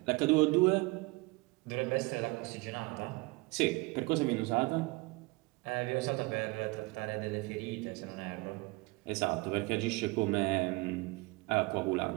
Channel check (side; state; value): left; quieter; 24.6 dB